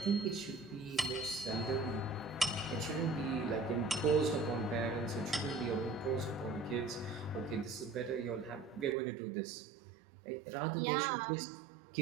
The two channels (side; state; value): left; drops out; at 9.0 s